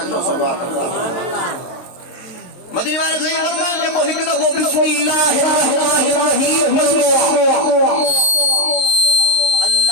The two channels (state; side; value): late; right; 23 ms